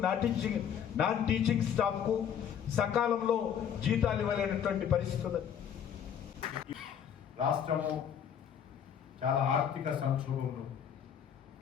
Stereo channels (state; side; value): quieter; right; 8.6 dB